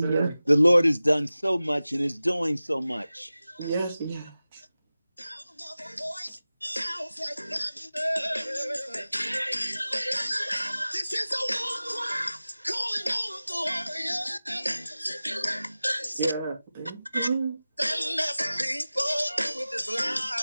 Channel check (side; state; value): both; inverted; correlation -0.96